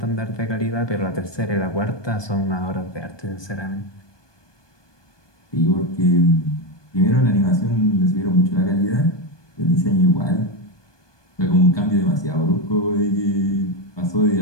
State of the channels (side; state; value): right; late; 1.2 ms